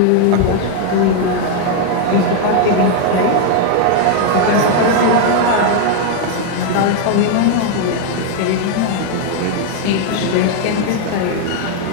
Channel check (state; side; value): different; both; correlation 0.00